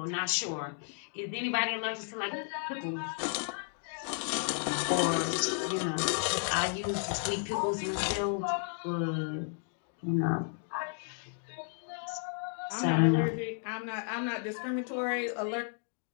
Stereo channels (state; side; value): silent; right; 56 dB below the other